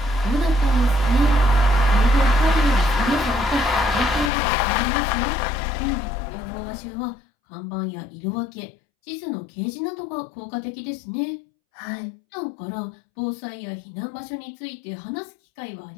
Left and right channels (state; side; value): drops out; right; at 4.3 s